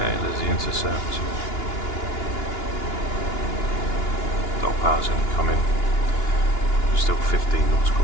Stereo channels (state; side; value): late; right; 2.9 ms